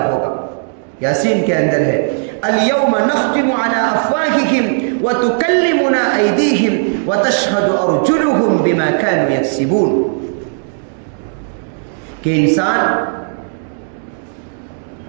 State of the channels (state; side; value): silent; left; digital silence